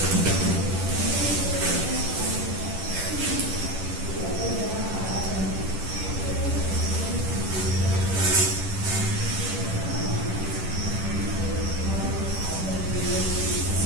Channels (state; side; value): late; left; 10 ms